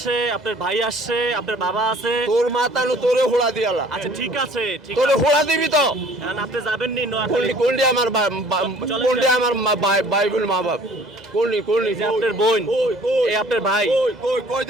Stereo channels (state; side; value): normal; both; correlation 0.53